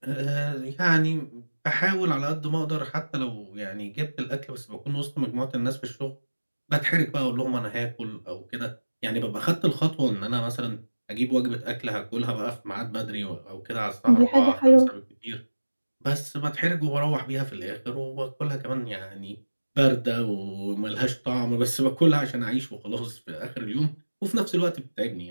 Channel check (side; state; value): both; inverted; correlation -1.00